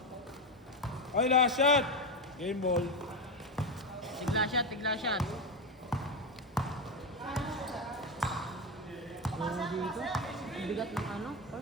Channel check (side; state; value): both; normal; correlation 0.13